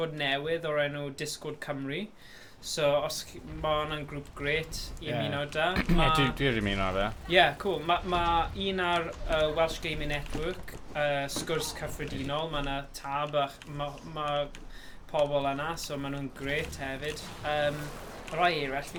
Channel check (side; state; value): both; identical; correlation 1.00